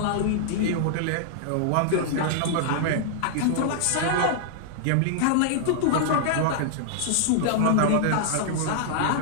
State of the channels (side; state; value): both; different; correlation -0.01